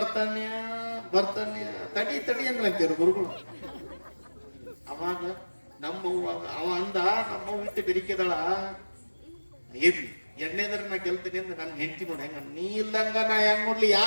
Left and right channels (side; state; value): both; inverted; correlation -1.00